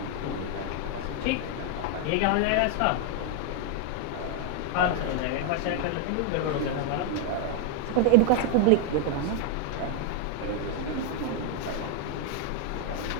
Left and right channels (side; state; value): both; different; correlation 0.00